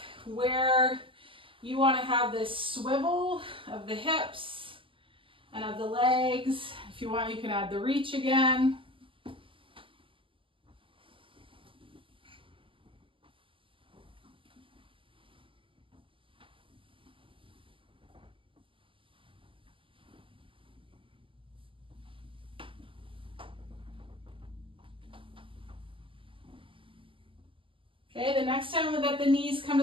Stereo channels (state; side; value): late; left; 0.25 ms